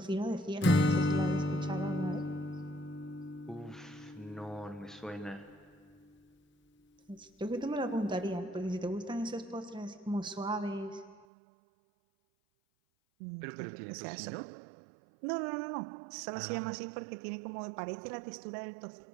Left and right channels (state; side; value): drops out; left; at 11.2 s